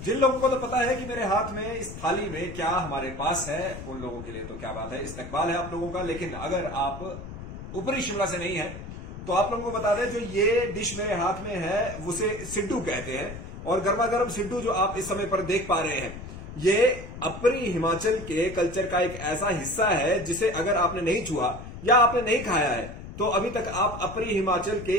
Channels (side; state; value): left; noise; rumble, 11 dB below the sound